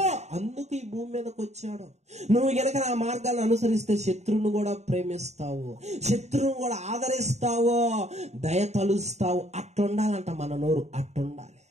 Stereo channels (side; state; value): left; late; 0.32 ms